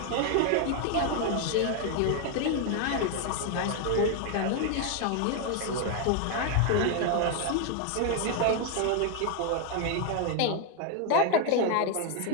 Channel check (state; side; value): different; both; correlation 0.01